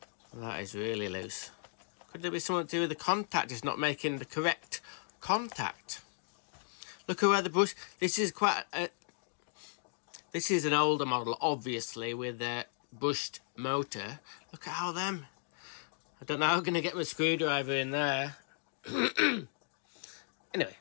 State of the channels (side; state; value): right; silent; digital silence